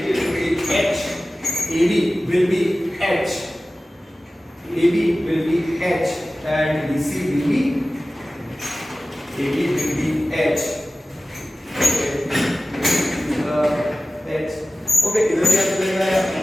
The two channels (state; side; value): normal; both; correlation 0.96